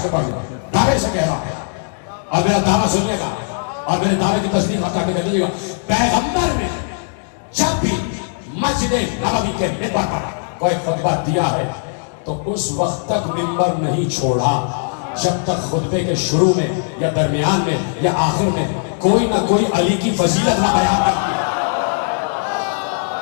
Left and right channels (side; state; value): right; silent; digital silence